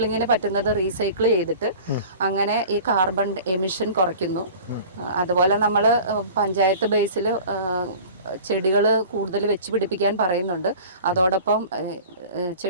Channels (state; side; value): inverted; both; correlation -0.41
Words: പറ്റുന്നത് റീസൈക്കിൾ ചെയ്തിട്ട് അങ്ങനെ ഈ കാർബൺ എമിഷൻ കുറയ്ക്കുന്നു. അതുപോലെ നമ്മൾ പഞ്ചായത്ത് ബേസിൽ ചെടികൾ കൂടുതൽ വെച്ച് പിടിപ്പിക്കാൻ പറയുന്നുണ്ട്. അതോടൊപ്പം